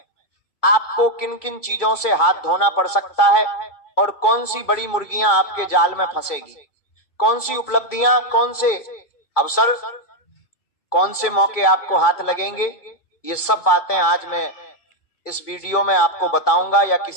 आपको किन किन चीजों से हाथ धोना पड़ सकता है और कौन सी बड़ी मुर्गियां आपके जाल में फंसेगी, कौन सी उपलब्धियां, कौन से अवसर, कौन से मौके आपको हाथ लगेंगे। ये सब बातें आज मैं इस वीडियो में आपको बताऊंगा, या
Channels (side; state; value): right; late; 2.3 ms